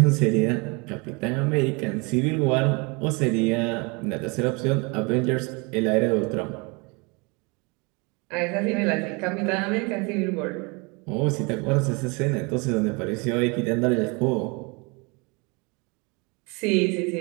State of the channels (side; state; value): left; quieter; 29.4 dB